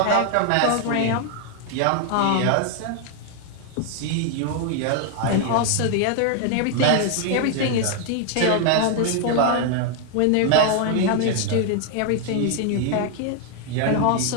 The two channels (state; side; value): different; both; correlation 0.00